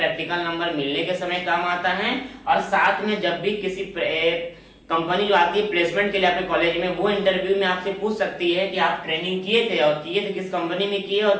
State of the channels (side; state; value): both; identical; correlation 1.00